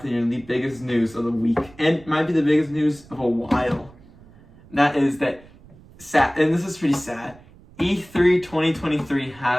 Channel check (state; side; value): noise; right; rumble, 24 dB below the sound